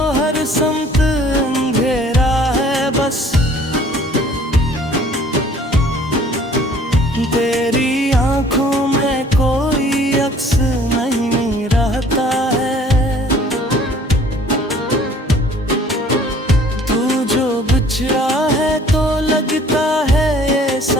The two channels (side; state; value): both; normal; correlation 0.54